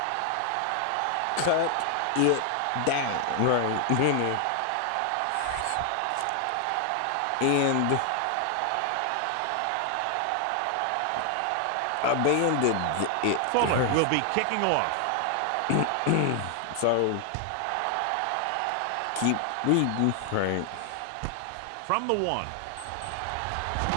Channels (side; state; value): both; different; correlation 0.00